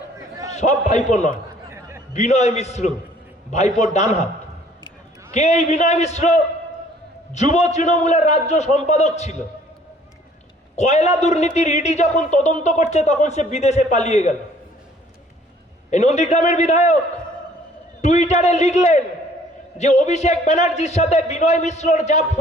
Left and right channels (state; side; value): normal; both; correlation 0.57